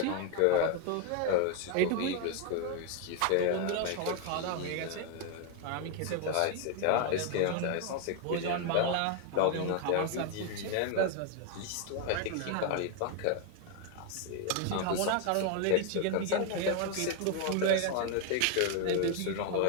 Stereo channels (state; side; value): different; both; correlation 0.01